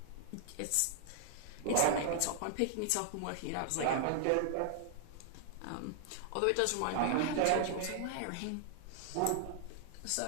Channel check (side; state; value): both; different; correlation 0.00